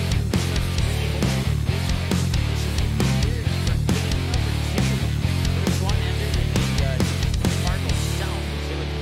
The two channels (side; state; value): both; identical; correlation 1.00